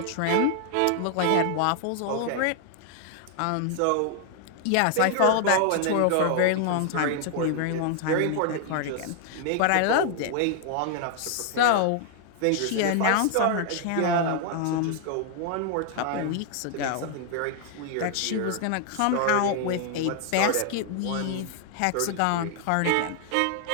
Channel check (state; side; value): different; both; correlation 0.00